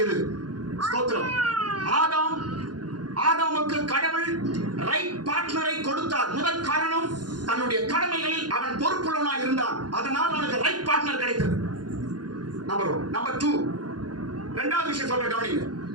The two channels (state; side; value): late; left; 0.70 ms